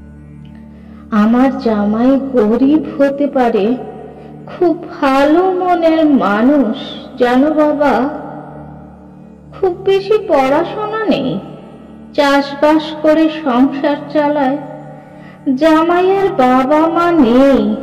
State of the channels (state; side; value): identical; both; correlation 1.00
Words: আমার জামাই গরিব হতে পারে, খুব ভালো মনের মানুষ জানো বাবা। খুব বেশি পড়াশোনা নেই, চাষবাস করে সংসার চালায়। জামাইয়ের বাবা মা নেই,